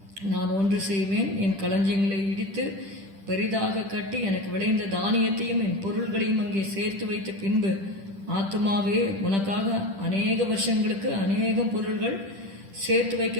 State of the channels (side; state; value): left; late; 10 ms